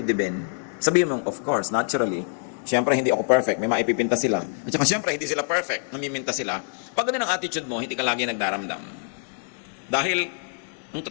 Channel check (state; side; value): silent; right; digital silence